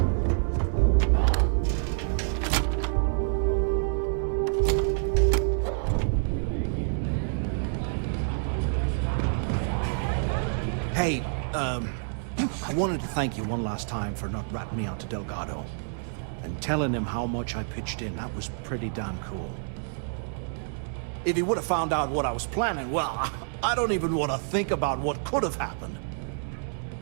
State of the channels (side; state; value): left; silent; digital silence